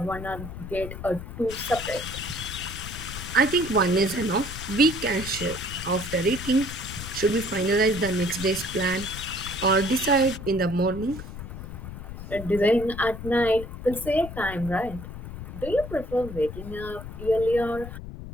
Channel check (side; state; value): left; noise; rumble, 10 dB below the sound